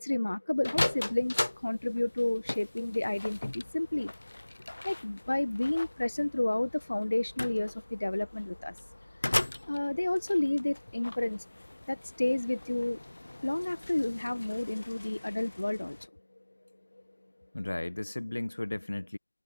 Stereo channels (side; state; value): both; inverted; correlation -1.00